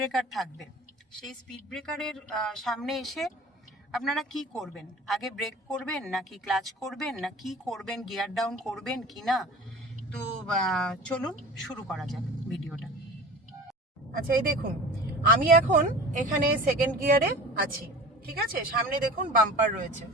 থাকবে সেই স্পিড ব্রেকারের সামনে এসে আপনারা কি করবেন। আগে ব্রেক করবেন নাকি ক্লাচ করবেন, না কি করবেন, গিয়ার ডাউন করবেন কি না। তো চলুন শুরু করা যাক ভিডিওটা। আচ্ছা, এই দেখুন আমি এখন এখানে সেকেন্ড গিয়ারে আছি, ঠিক আছে। সামনে দেখুন বাম্পার রয়েছে,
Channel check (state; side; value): normal; both; correlation 0.38